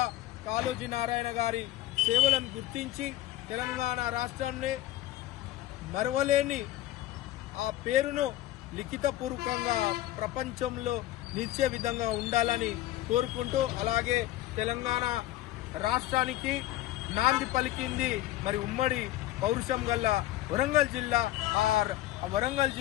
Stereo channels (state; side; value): quieter; right; 15.2 dB